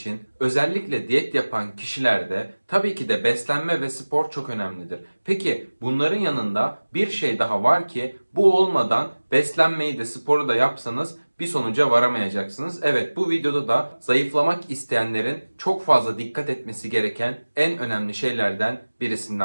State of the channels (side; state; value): both; inverted; correlation -1.00